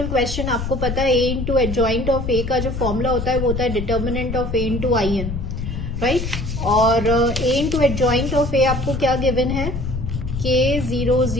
question. आपको पता है A into adjoint of A का जो फॉर्मूला होता है वो होता है determinant of A into IN, right. और A into adjoint of A आपको क्या गिवन है, K 0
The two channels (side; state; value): left; noise; rumble, 5 dB below the sound